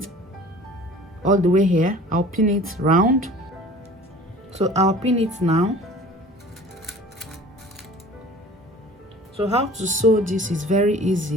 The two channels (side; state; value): both; normal; correlation 0.45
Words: all the way here. I'll pin it round. So I'll pin it now. So how to sew this is very